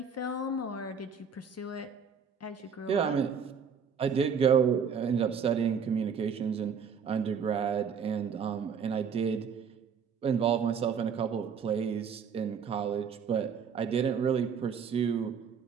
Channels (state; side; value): quieter; left; 6.6 dB